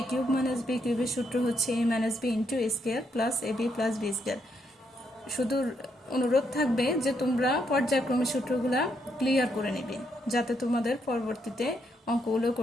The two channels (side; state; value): both; normal; correlation 0.77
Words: কিউব মাইনাস বি কিউবের সূত্র হচ্ছে a minus B into a square plus A b plus b square. শুধু অনুরোধ থাকবে যে তোমরা পর্যায়ক্রমে সূত্রগুলা ক্লিয়ার করে নেবে, যাতে তোমাদের পরবর্তীতে অঙ্কগুলো